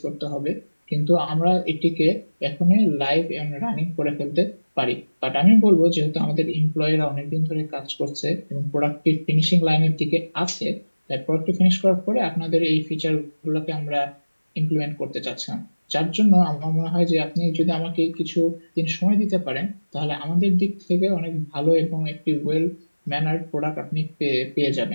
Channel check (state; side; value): inverted; both; correlation -1.00